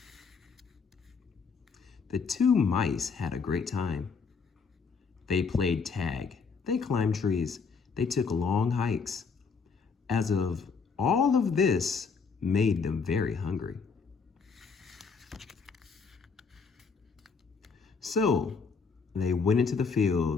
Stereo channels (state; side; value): quieter; right; 5.3 dB